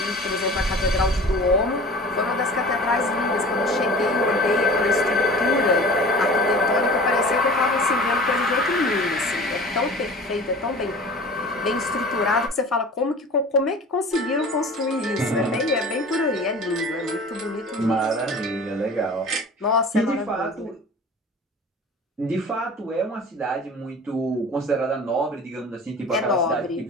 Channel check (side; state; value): both; normal; correlation 0.41